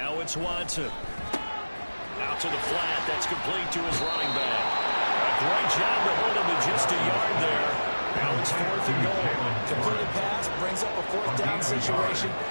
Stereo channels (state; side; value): inverted; both; correlation -1.00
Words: it's Watson. Out to the flat. That's complete to his running back. A great job to hold him to just a yard there. Now it's 4th and goal. Completed pass brings up a 4th down situation.